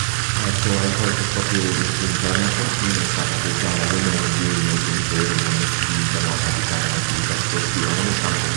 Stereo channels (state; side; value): silent; left; 60 dB below the other